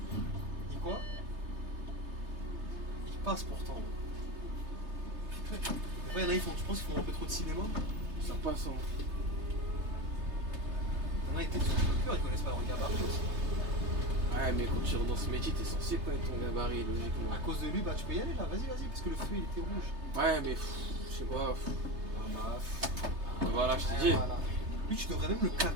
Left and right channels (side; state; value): left; late; 3.3 ms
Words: Dis quoi? Ils passent pourtant. Après, il y en a, tu penses qu'ils font un peu trop de cinéma? Ça passe, hein. Il y en a, ils étaient sur le cœur, ils connaissent pas leur gabarit aussi. Ouais, mais quand tu rentres dans ce métier, t'es censé connaître ton gabarit, logiquement. À cause de lui, bah tu peux y aller là, vas-y, parce que le feu il était rouge. Ouais, mais je sais pas. Ah bah, Voilà, je t'ai dit. voilà. Lui, tu devrais même le